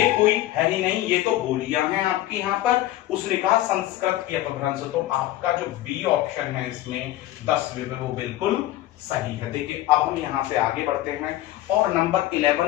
कोई है ही नहीं, ये तो बोलियां हैं आपकी यहाँ पर। उसने कहा संस्कृत की अपभ्रंश, तो आपका जो बी ऑप्शन है इसमें 10 वो बिल्कुल सही है। देखिए अब हम यहां से आगे बढ़ते हैं और नंबर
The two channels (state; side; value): quieter; right; 14.9 dB